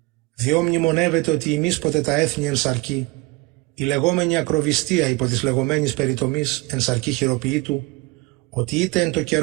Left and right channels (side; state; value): left; quieter; 24.0 dB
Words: Διό μνημονεύεται ότι εμείς ποτέ τα έθνη εν σαρκή, η λεγόμενη ακροβιστία υπό της λεγόμενης περιτομής εν σαρκή χειροποιήτου, ότι είτε εν το